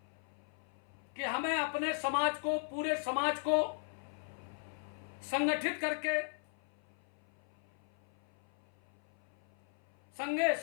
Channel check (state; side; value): silent; right; 52 dB below the other